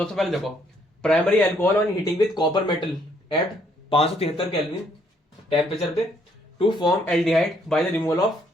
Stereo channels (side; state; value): both; normal; correlation 0.68